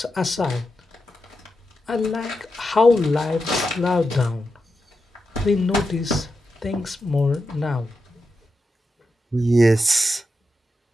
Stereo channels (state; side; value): normal; both; correlation 0.88